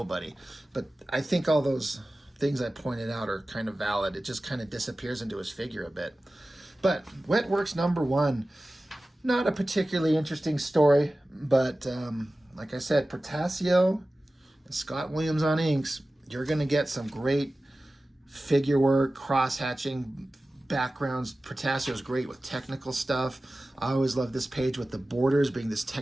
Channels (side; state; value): both; normal; correlation 0.96